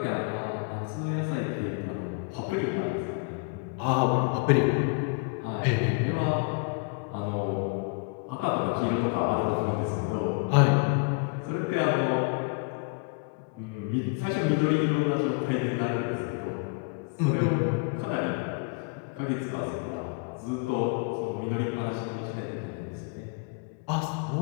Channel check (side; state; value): right; quieter; 32.0 dB